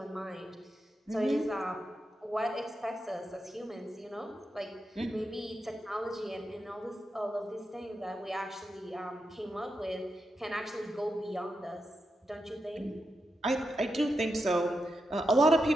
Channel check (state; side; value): normal; both; correlation 0.87